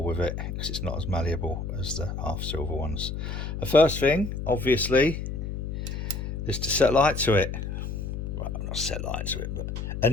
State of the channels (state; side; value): noise; left; hum, 5 dB below the sound